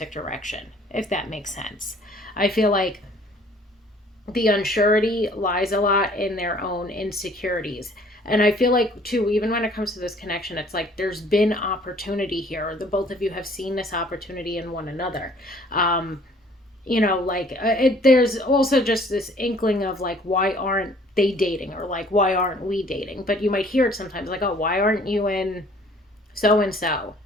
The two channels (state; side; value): normal; both; correlation 0.56